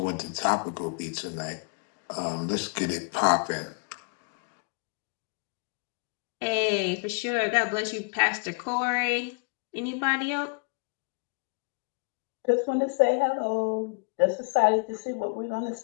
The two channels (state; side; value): quieter; right; 35.6 dB